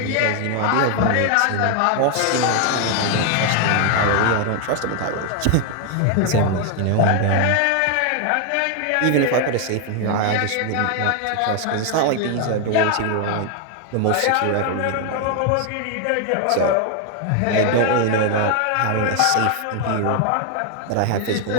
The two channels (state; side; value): different; both; correlation 0.00